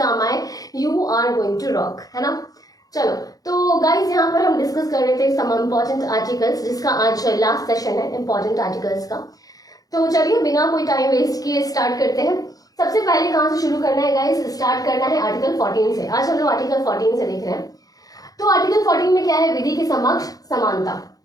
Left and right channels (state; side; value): late; right; 0.18 ms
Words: आए you are going to rock, है ना। चलो, तो गाइज यहाँ पर हम डिस्कस कर रहे थे सम इम्पॉर्टेंट आर्टिकल्स, जिसका आज लास्ट सेशन है इम्पॉर्टेंट आर्टिकल्स का। तो चलिए बिना कोई टाइम वेस्ट किए स्टार्ट करते हैं। सबसे पहले कहाँ से शुरू करना है गाइस? स्टार्ट करना है आर्टिकल 14 से। आज हम लोग आर्टिकल 14 से देख रहे हैं। तो आर्टिकल 14 में क्या है? विधि के समक्ष समानता।